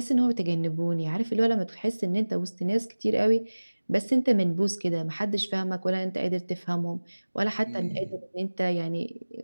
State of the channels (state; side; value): inverted; both; correlation -1.00